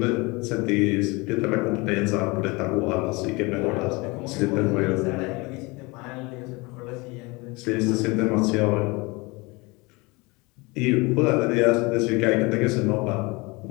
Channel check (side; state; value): right; quieter; 25.5 dB